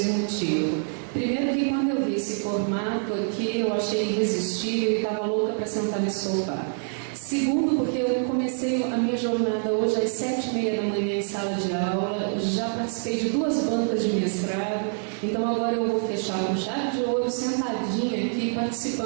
o motivo. Primeiro que quando eu vi esse formato aqui, eu achei irresistível e estava louca para sentar nesse sofá. Segundo, porque eu comecei a minha jornada hoje às 7h30 da manhã em sala de aula, já participei de 2 bancas de mestrado, então agora eu vou fechar com chave de ouro, sentadinha aqui,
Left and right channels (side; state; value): left; silent; 60 dB below the other